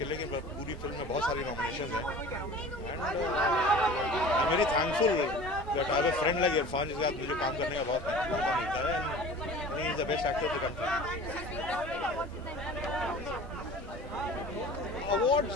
लिए, लेकिन पूरी फिल्म में बहुत सारी नॉमिनेशन हैं। And I am very thankful that I have a friend like Irfan, जिसके साथ मुझे काम करने का बहुत मौका मिलता है। And he is the best actor of the country.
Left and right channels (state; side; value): normal; both; correlation 0.41